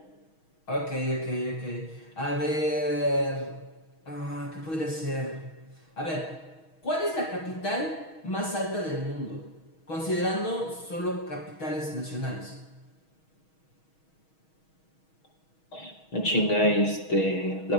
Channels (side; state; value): right; late; 6.3 ms